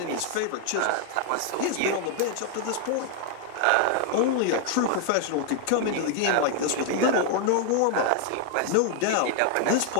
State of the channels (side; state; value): both; different; correlation 0.00